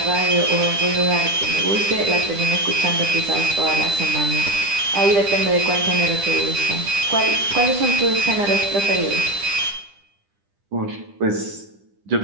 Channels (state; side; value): late; left; 10 ms